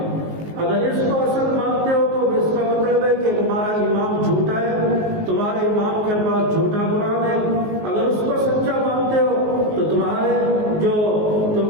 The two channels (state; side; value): late; left; 19 ms